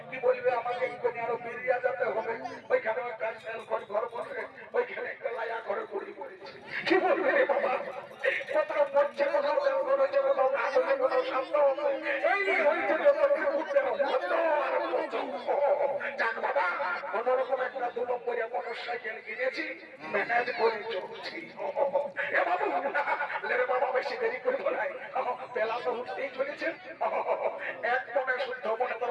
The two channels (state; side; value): identical; both; correlation 1.00